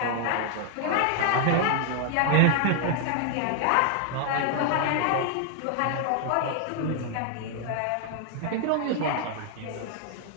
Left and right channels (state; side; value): different; both; correlation 0.00